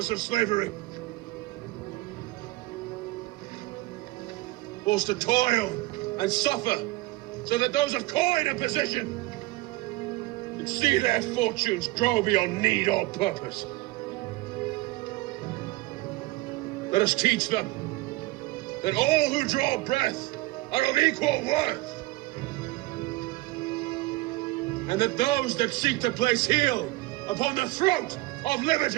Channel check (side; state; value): left; quieter; 20.6 dB